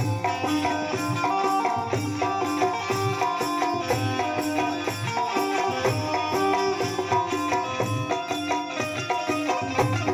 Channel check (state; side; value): identical; both; correlation 1.00